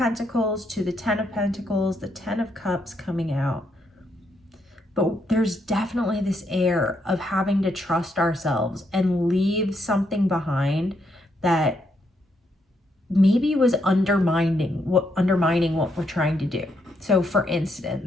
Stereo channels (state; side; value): normal; both; correlation 0.77